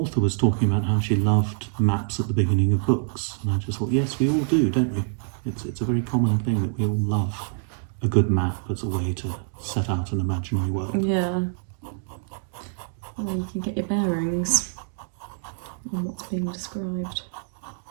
was talking about how she loved maps at the beginning of books. And I just thought, yes, we all do, don't we? It's a very common thing that we all love a good map as a way to set out an imaginary world. Yeah. Well, you can get your bearings on what's being described.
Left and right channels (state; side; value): silent; left; 61 dB below the other